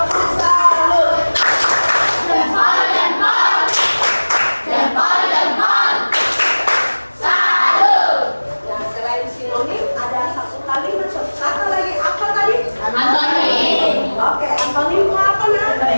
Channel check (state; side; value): inverted; both; correlation -1.00